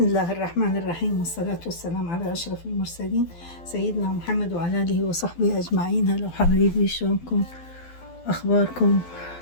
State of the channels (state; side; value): late; right; 12 ms